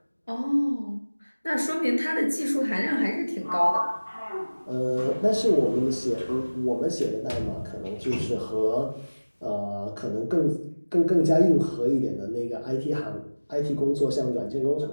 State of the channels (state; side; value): inverted; both; correlation -1.00